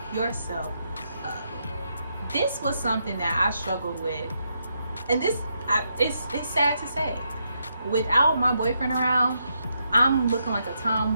yourself up. This was something that I struggled with, and it's sad to say, without my boyfriend around, I'm looking like a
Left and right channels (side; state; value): both; inverted; correlation -0.80